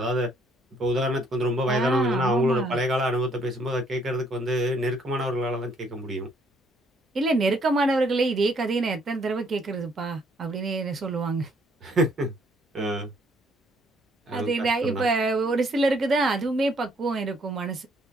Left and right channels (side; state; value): both; normal; correlation 0.66